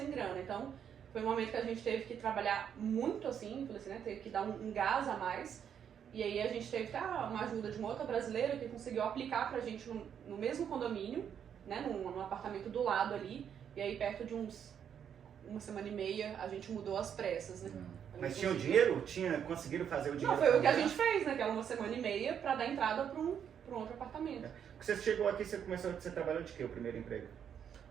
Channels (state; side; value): quieter; left; 8.4 dB